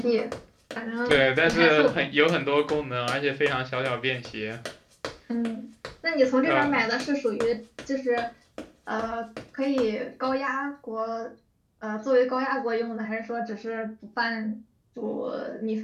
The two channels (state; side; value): identical; both; correlation 1.00